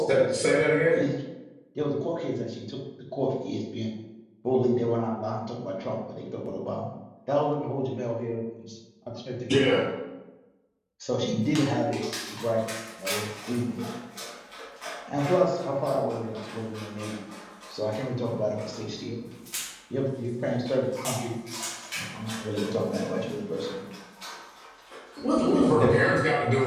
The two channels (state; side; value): identical; both; correlation 1.00